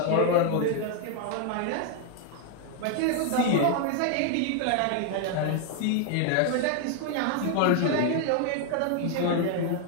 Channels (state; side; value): different; both; correlation 0.00